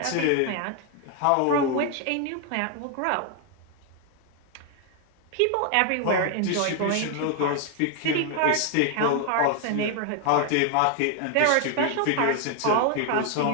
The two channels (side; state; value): both; different; correlation 0.00